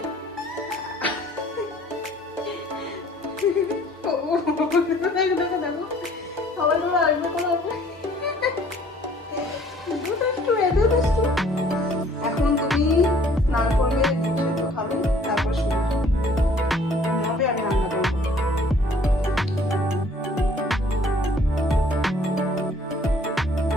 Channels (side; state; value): both; normal; correlation 0.57